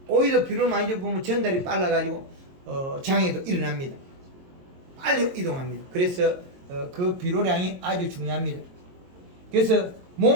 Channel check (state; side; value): late; left; 22 ms